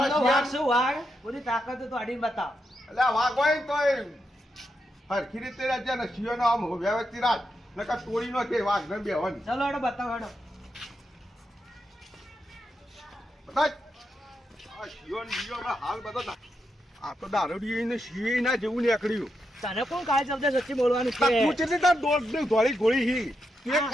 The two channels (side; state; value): both; normal; correlation 0.84